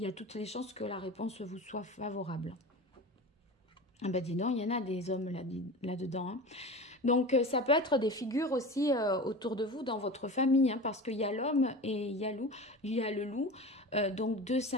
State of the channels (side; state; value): both; normal; correlation 0.32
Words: a toutes les chances que la réponse vous soit favorable. Ah ben dis donc, il y en a des hommes là-dedans. Hein. Donc ça peut être des figures aussi autour de vous dans votre famille, hein, parce qu'il y a l'homme et il y a le loup, donc deux